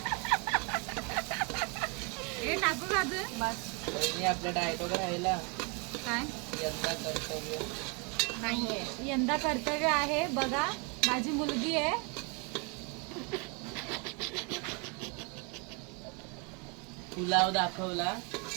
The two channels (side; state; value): left; quieter; 32.9 dB